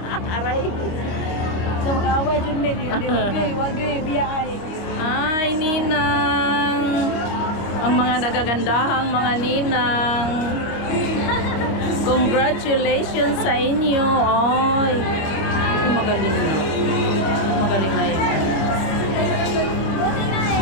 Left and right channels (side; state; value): right; late; 26 ms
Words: Aray. Isa mag-away, Jud may. Wagay, biyay. Ay, ninang. Ang mga nagagandahang mga ninang. Congratulations sa inyo. Ay, magaling na. Magaling na yun.